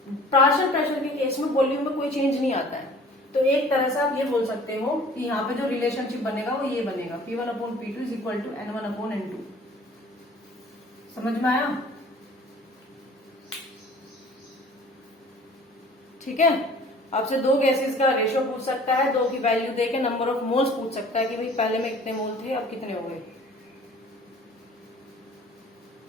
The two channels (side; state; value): both; normal; correlation 0.49